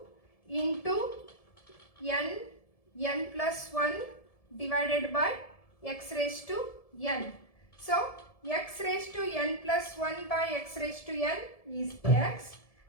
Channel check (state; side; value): late; right; 1.7 ms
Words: into n plus 1 divided by x raised to n. So x raised to n plus 1 by x raised to n is x,